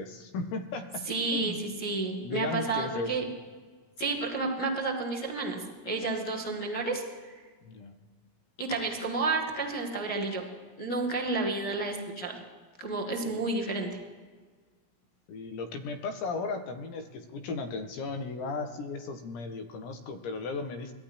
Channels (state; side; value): late; right; 17 ms